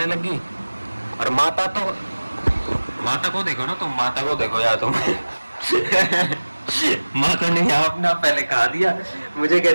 लगी। और माता को देखो ना तुम, माता को देखो यार तुम। माता ने यहाँ अपना पहले खा दिया, मुझे कह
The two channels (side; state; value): both; inverted; correlation -1.00